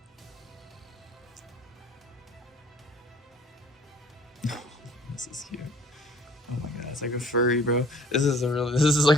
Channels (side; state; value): both; normal; correlation 0.53